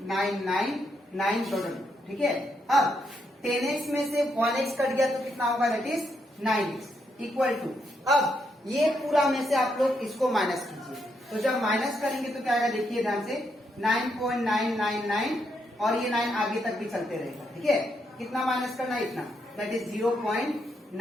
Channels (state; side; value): normal; both; correlation 0.78